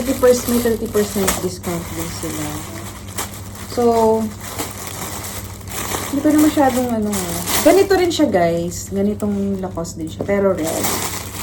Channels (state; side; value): identical; both; correlation 1.00